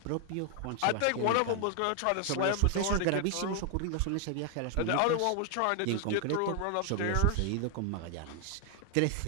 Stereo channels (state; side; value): different; both; correlation 0.00